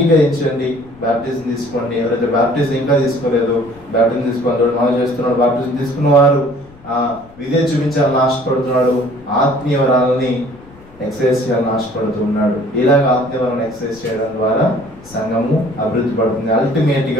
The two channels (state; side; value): noise; left; rumble, 24 dB below the sound